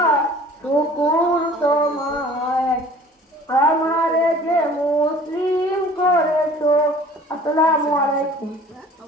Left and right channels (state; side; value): normal; both; correlation 0.48